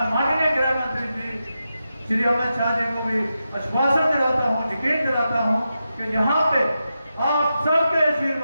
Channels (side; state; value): both; inverted; correlation -0.89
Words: माननीय गृह मंत्री जी श्री अमित शाह जी को भी आश्वासन दिलाता हूं, यकीन दिलाता हूं कि यहाँ पे आप सबके